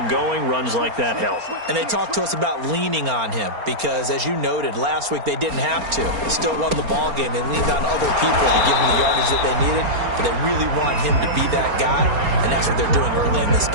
going. Runs like that help. And they talked to us about leaning on him because, as you noted, last week they didn't have to. Still won the ball game. They leaned on other people to give them the yardage that they needed, but they really want him to be that guy, and that's what they're doing early in this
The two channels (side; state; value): left; late; 4.3 ms